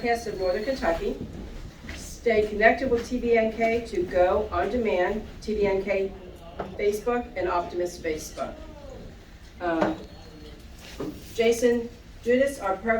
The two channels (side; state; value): both; identical; correlation 1.00